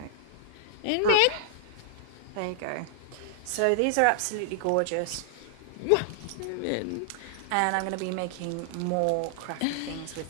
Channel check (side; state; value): both; different; correlation -0.01